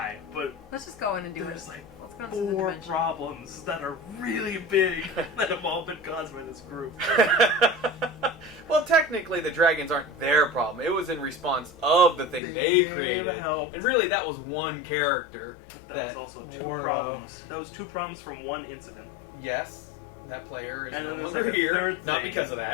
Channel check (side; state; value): right; drops out; at 12.4 s